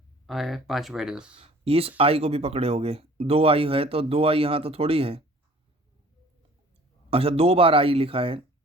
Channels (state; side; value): normal; both; correlation 0.51